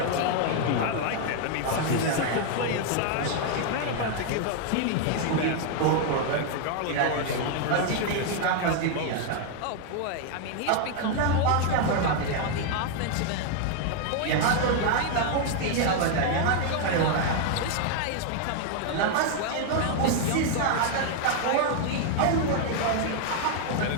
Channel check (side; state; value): both; different; correlation 0.00